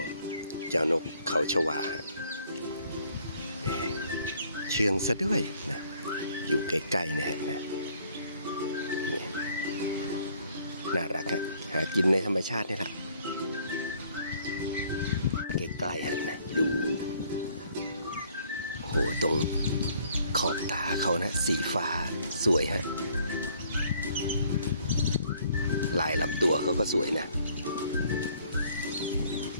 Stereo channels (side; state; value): both; inverted; correlation -0.61